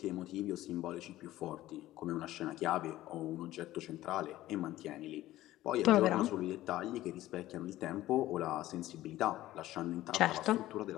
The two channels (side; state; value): right; quieter; 15.4 dB